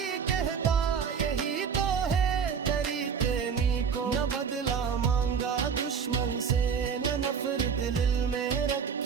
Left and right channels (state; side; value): quieter; left; 6.6 dB